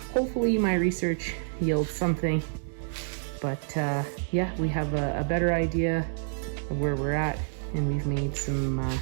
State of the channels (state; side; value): silent; left; digital silence